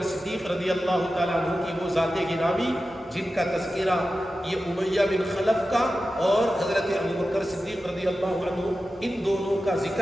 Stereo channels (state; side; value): noise; right; rumble, 29 dB below the sound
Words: صدیق رضی اللہ تعالیٰ عنہ کی وہ ذات گرامی جن کا تذکرہ یہ امیہ بن خلف کا اور حضرت ابوبکر صدیق رضی اللہ عنہ، ان دونوں کا